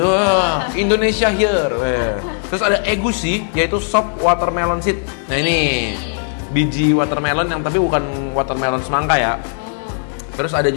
Indonesia here. Terus ada egusi, yaitu sop watermelon seed. Nah ini biji watermelon yang tapi bukan watermelon semangka ya. Oh. Terus ada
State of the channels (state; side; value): silent; right; 66 dB below the other